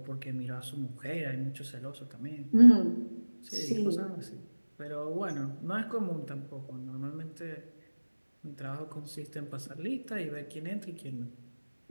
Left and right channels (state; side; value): inverted; both; correlation -1.00